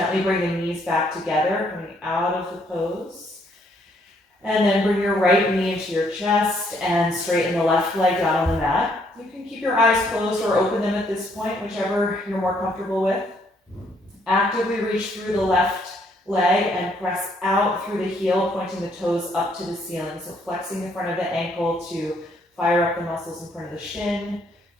bring the knees back together, coming out of the pose. And then bring your right knee into your chest and straighten the left leg down on the mat. You can keep your eyes closed or open them at this point, whichever you're more comfortable with. Actively reach through the left leg and press out through the heel, pointing the toes up to the ceiling. So flexing the front of the ankle to fire up the muscles in front of the shin.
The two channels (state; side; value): normal; both; correlation 0.68